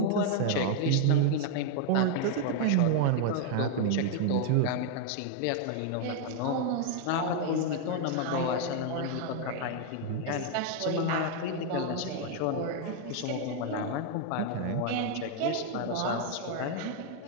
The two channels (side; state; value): both; different; correlation 0.00